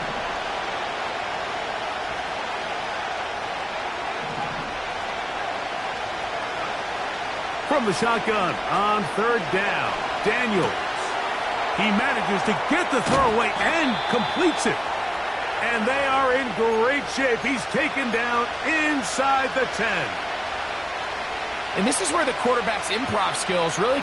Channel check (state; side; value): identical; both; correlation 1.00